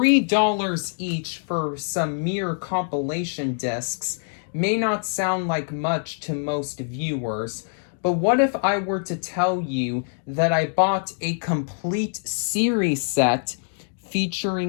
each for some mere compilation discs may not sound like much to most viewers, but what if I were to tell you that I bought a complete series set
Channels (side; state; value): right; silent; digital silence